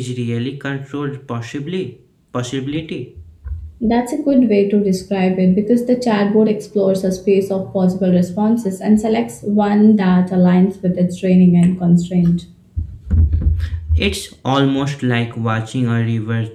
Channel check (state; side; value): identical; both; correlation 1.00